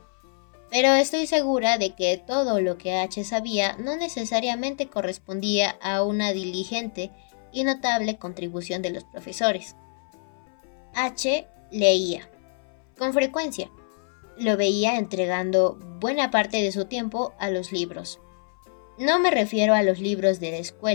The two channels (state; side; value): silent; right; 59 dB below the other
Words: Pero estoy segura de que todo lo que H sabía no necesariamente correspondía a una diligente y notable contribución de los profesores. H leía, con frecuencia. Lo veía entregando buena parte de su tiempo a los libros. No me refiero a los libros de la